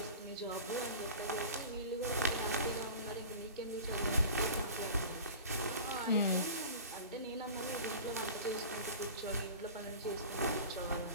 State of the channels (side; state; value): both; inverted; correlation -0.37